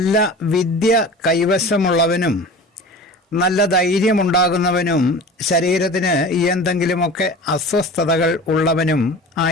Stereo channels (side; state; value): both; normal; correlation 0.37